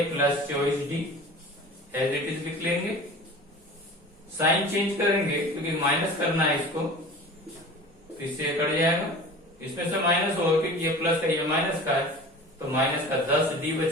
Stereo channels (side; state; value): both; normal; correlation 0.39